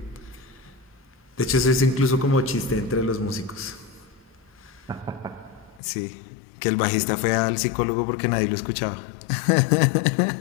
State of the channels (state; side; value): drops out; right; at 5.8 s